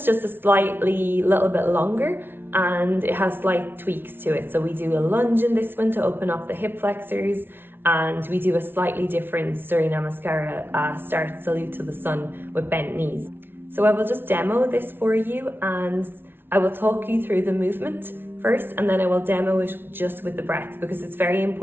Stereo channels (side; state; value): left; late; 0.11 ms